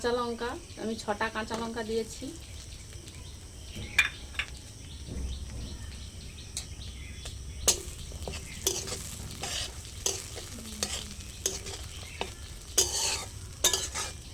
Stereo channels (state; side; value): identical; both; correlation 1.00